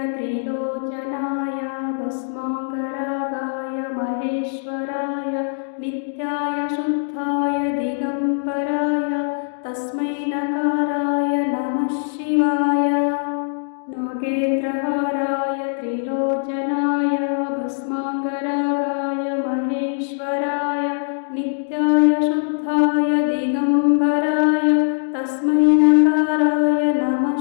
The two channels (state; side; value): silent; right; digital silence